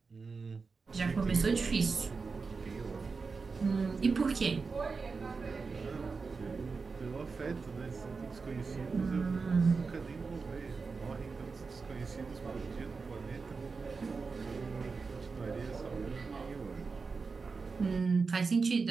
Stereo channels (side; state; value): left; quieter; 4.6 dB